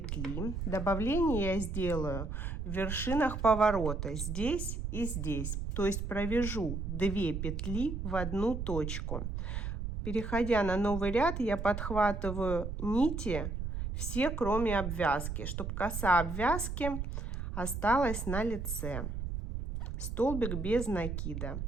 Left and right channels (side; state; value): right; noise; rumble, 4 dB below the sound